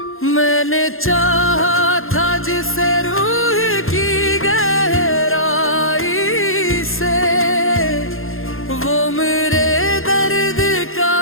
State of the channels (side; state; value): right; late; 0.60 ms